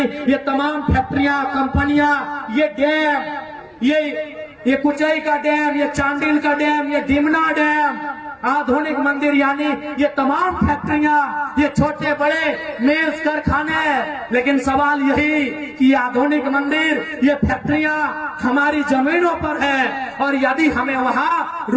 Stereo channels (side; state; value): both; identical; correlation 1.00